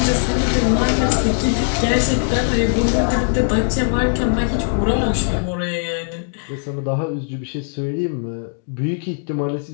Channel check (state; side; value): silent; right; digital silence